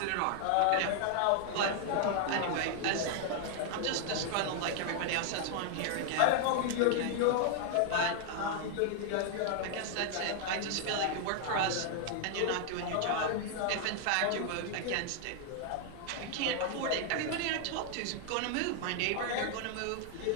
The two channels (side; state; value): both; different; correlation 0.00